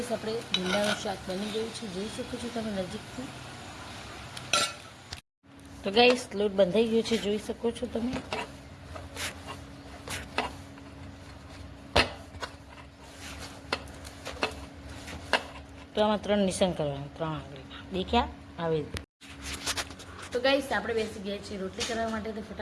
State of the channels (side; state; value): both; identical; correlation 1.00